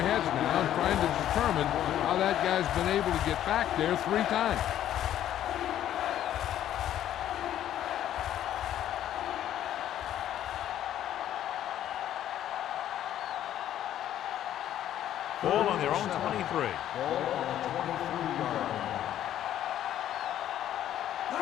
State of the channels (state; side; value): quieter; right; 11.6 dB